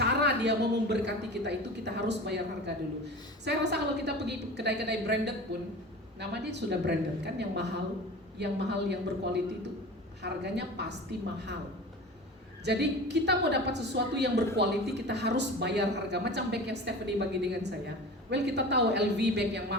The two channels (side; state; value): both; normal; correlation 0.35